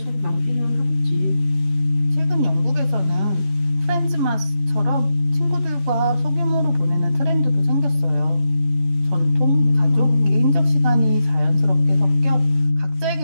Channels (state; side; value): late; left; 10 ms